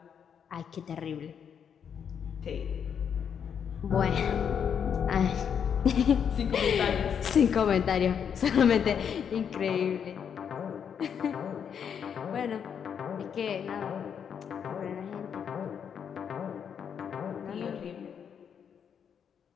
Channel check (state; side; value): quieter; right; 7.7 dB